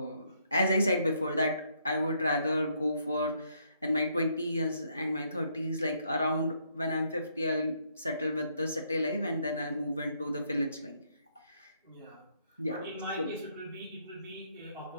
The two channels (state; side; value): inverted; both; correlation -0.72